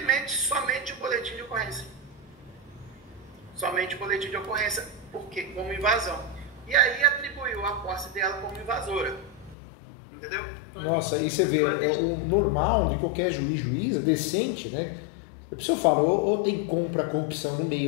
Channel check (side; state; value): right; drops out; at 9.6 s